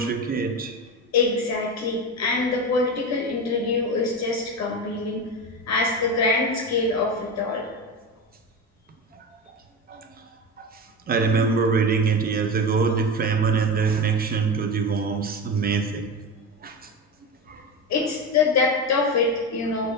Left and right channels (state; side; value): normal; both; correlation 0.21